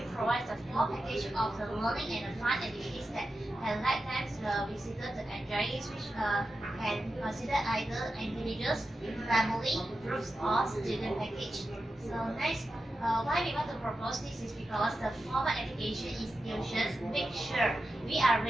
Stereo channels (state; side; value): normal; both; correlation 0.91